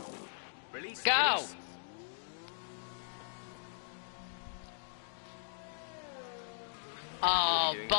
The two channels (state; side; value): silent; right; digital silence